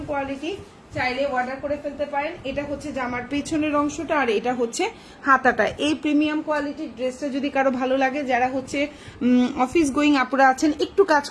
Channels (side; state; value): both; identical; correlation 1.00